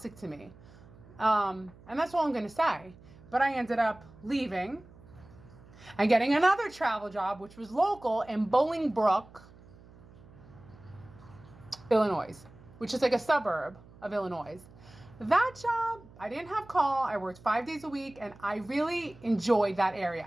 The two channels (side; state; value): right; noise; hum, 22 dB below the sound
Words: to me. And that's all I'm going to say. But I ended up leaving and getting another travel job, which was local in Bolingbrook, Illinois, which is like a suburb of Illinois. That job, I didn't have call. I worked 5 days a week and I really enjoyed that